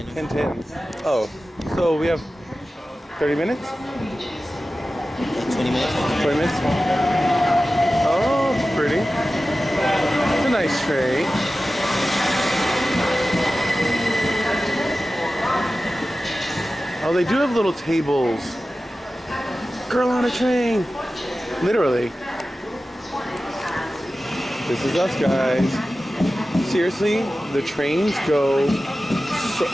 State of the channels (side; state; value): both; normal; correlation 0.95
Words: 10:10. Oh, so we have 30 minutes? Like 20 minutes. 20 minutes? Oh, it's pretty. It's a nice train. Oh, they do have little tables. Girl on a train. Literally. This is us, guys. Seriously, the trains go, so,